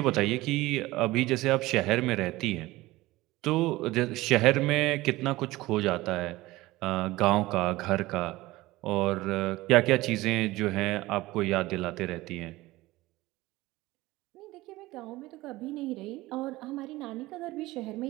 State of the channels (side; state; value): left; quieter; 18.8 dB